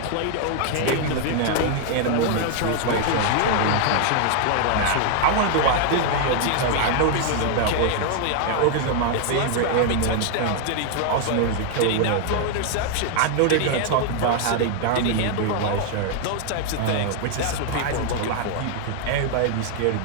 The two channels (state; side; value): different; both; correlation 0.00